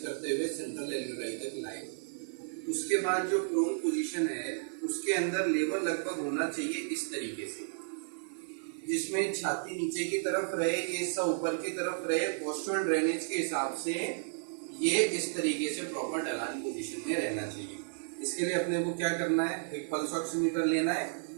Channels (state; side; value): silent; left; 56 dB below the other